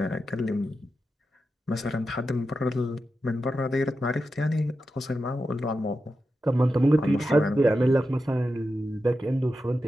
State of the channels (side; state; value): both; normal; correlation 0.90